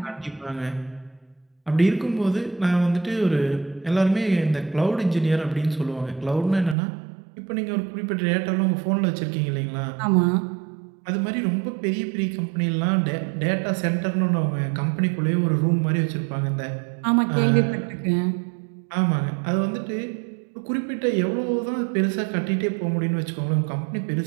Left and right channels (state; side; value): drops out; left; at 6.8 s